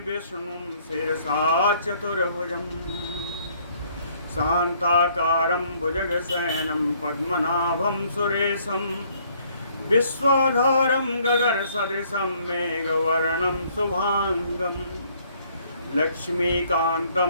विष्णुं शिरसा चतुर्भुजम्। शान्ताकारं भुजगशयनं पद्मनाभं सुरेशं विश्वाधारं गगनसदृशं मेघवर्णं शुभाङ्गं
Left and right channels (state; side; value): inverted; both; correlation -0.64